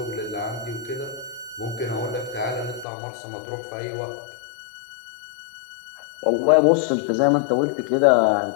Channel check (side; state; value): right; drops out; at 2.9 s